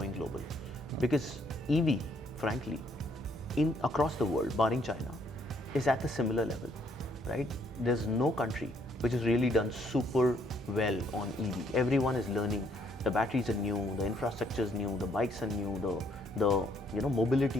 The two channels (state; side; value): normal; both; correlation 0.68